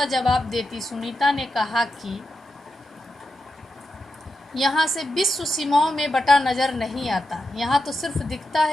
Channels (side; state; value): both; normal; correlation 0.87